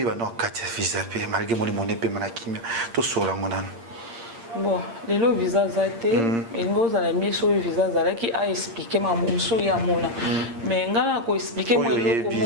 no kati visa pe malgré moni monepe manakimia to sola ngona. Bon, les lots visa zate, et nous allons mis sur le visa zala qui a expliqué ma mousso ya mona. Mais ngana ko expliquer moi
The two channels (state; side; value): late; left; 8.7 ms